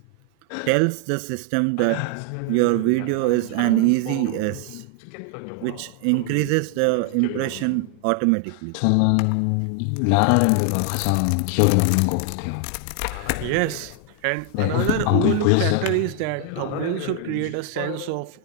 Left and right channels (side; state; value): both; different; correlation 0.00